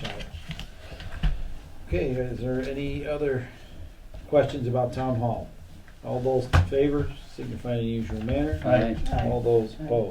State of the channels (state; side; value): identical; both; correlation 1.00